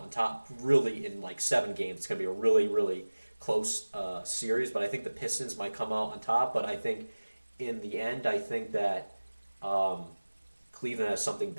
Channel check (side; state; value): both; inverted; correlation -1.00